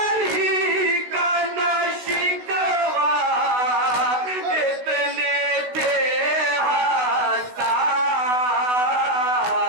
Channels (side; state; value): left; late; 16 ms